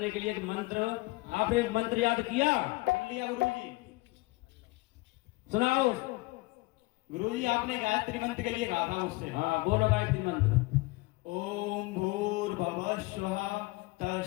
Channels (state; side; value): quieter; right; 22.8 dB